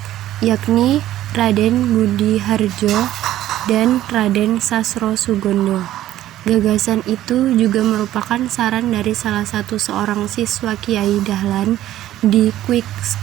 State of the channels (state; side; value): quieter; left; 13.5 dB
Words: yakni Raden Budi Harjo dan Raden Sasro Sugondo. Gagasan itu juga merupakan saran dari salah satu seorang siswa Kiai Dahlan di Quick